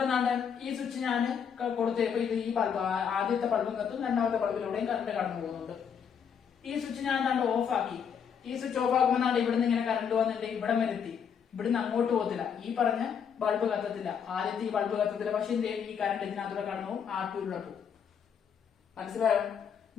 ഈ സ്വിച്ച് ഞാൻ കൊടുത്തപ്പോ ഇത് ഈ ബൾബ് ആദ്യത്തെ ബൾബും കത്തും, രണ്ടാമത്തെ ബൾബിലൂടെയും കറണ്ട് കടന്നു പോകുന്നുണ്ട്. ഈ സ്വിച്ച് ഞാൻ ഓഫ് ആക്കി. ഈ സ്വിച്ച് ഓഫ് ആക്കുമ്പോൾ ഇവിടുന്ന് ഇങ്ങനെ കറണ്ട് വന്നിട്ട് ഇവിടെ വരെ എത്തി. ഇവിടുന്ന് അങ്ങോട്ട് പോകത്തില്ല, ഈ പറഞ്ഞ ബൾബ് കത്തത്തില്ല, ആദ്യത്തെ ഈ ബൾബ് കത്തത്തില്ല. പക്ഷെ ഈ കറണ്ട് ഇതിനകത്തൂടെ കടന്നു പോകും, R2 പോകും. മനസ്സിലായോ?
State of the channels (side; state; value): right; quieter; 7.4 dB